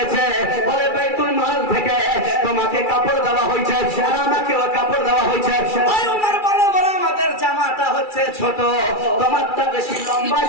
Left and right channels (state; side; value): late; right; 2.3 ms